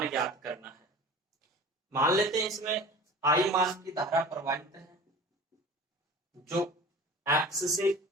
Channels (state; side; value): normal; both; correlation 0.40